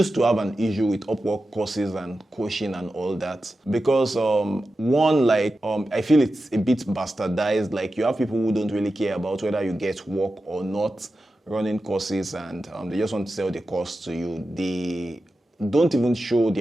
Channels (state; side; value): normal; both; correlation 0.92